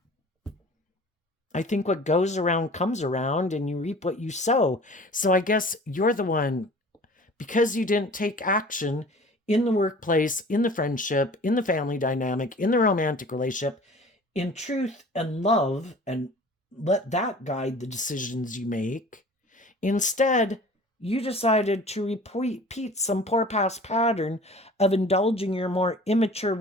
I think what goes around comes around and you reap what you sow. So I guess you're the one, because you didn't take action in the workplace, in the friendship, in the family dynamic, in the romantic relationship, in truth and love, and let that guide the decisions you make. Instead, you decided to repeat some poor past pattern of indulging your more immature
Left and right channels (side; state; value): both; normal; correlation 0.44